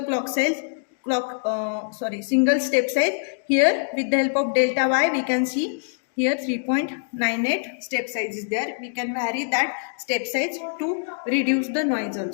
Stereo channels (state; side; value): silent; right; digital silence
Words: single step size. Here with the help of delta y we can see here 3.98 step size is there. We can vary that step size to reduce the noise